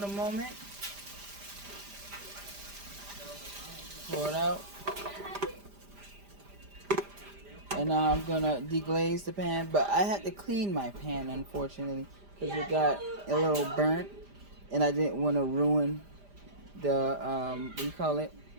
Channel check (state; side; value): late; left; 5.0 ms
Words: moment. Pour it out. And now I'm gonna deglaze the pan, but I had to clean my pan, unfortunately, because it got a little burnt, and I didn't want to ruin the what do you call it?